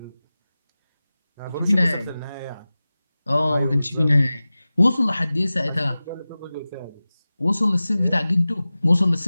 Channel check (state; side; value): inverted; both; correlation -0.97